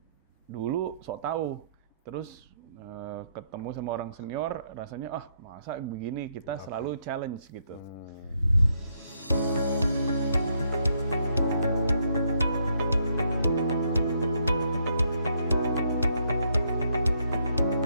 dulu sok tahu, terus ketemu sama orang senior rasanya masa begini, kita selalu challenge gitu.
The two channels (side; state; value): both; inverted; correlation -0.74